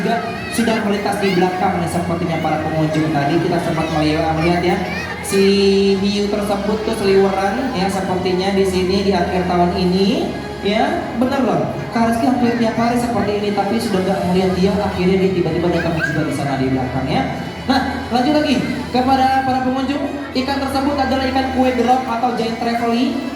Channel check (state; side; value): identical; both; correlation 1.00